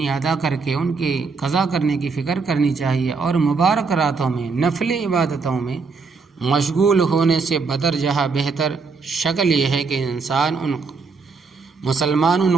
ادا کر کے ان کی قضا کرنے کی فکر کرنی چاہیے۔ اور مبارک راتوں میں نفل عبادتوں میں مشغول ہونے سے بدرجہ بہتر شکل یہ ہے کہ مسلمان ان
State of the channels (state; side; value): quieter; left; 4.7 dB